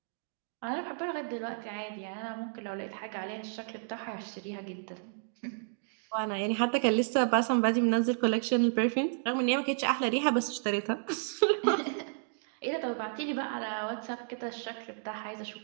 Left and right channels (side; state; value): left; silent; digital silence